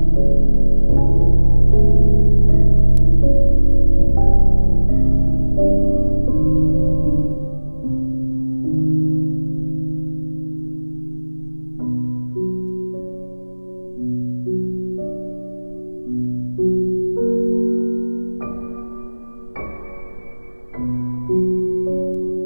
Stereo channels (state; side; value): inverted; both; correlation -1.00